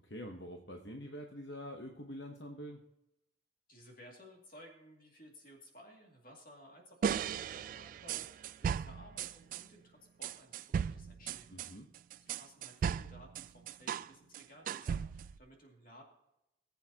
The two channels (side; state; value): left; quieter; 6.3 dB